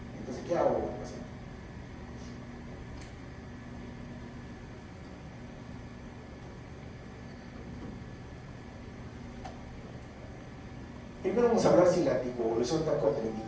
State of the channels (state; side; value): identical; both; correlation 1.00